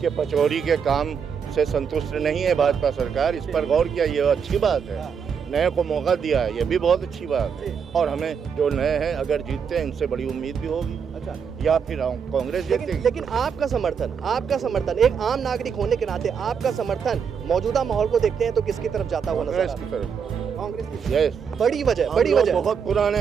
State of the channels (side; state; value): left; quieter; 6.8 dB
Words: पचौरी के काम से संतुष्ट नहीं है भाजपा सरकार, इस पर गौर किया, ये अच्छी बात है। नए को मौका दिया है, ये भी बहुत अच्छी बात है। और हमें जो नए हैं अगर जीतते हैं इनसे बड़ी उम्मीद भी होगी। अच्छा, या फिर कांग्रेस जीतेगी। लेकिन आपका समर्थन एक आम नागरिक होने के नाते आपका समर्थन मौजूदा माहौल को देखते हैं तो किसकी तरफ जाता हुआ नजर आ कांग्रेस रहा की तरफ। है? कांग्रेस की। यस, बड़ी वजह बहुत